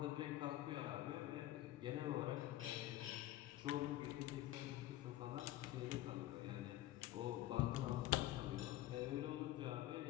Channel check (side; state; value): right; quieter; 15.2 dB